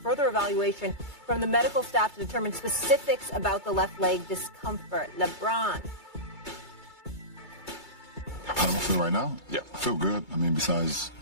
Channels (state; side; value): late; left; 2.3 ms